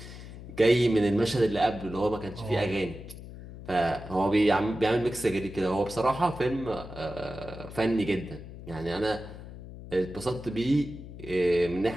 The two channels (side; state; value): left; noise; hum, 13 dB below the sound